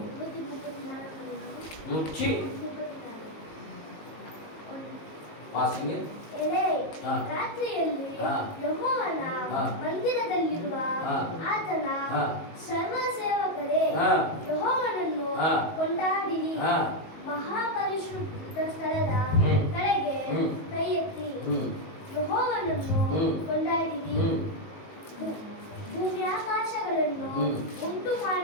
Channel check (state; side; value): late; right; 19 ms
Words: 100 ವಾಸಿಂಗೆ ರಾತ್ರಿಯಲ್ಲಿ ಯೆಹೋವನ ಮಂದಿರದಲ್ಲಿರುವ ಆತನ ಸರ್ವ ಸೇವಕರೇ ಯೆಹೋವನನ್ನು ಕೊಂಡಾಡಿರಿ. ಮಹಾಪರಿಶುದ್ಧ ಸ್ಥಳದ ಕಡೆಗೆ ಕೈ ಎತ್ತಿ ಯೆಹೋವನನ್ನು ಕೊಂಡಾಡಿರಿ. ಭೂಮಿ ಆಕಾಶಗಳನ್ನು ಉಂಟು